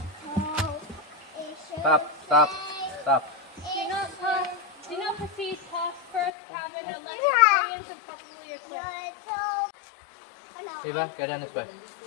Stop, stop, stop. Do not proceed past first cabin unless experienced and properly equipped. Eva, go down this way.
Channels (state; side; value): drops out; right; at 6.3 s